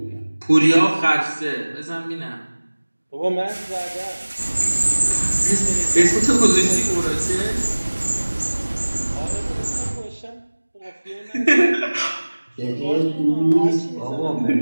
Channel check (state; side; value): inverted; both; correlation -1.00